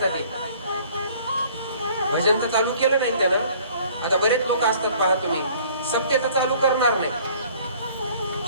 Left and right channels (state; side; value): inverted; both; correlation -0.54